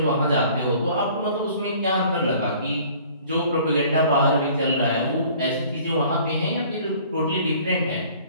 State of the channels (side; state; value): both; inverted; correlation -0.52